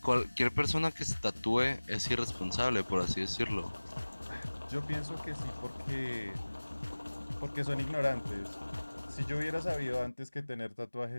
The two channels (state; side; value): inverted; both; correlation -1.00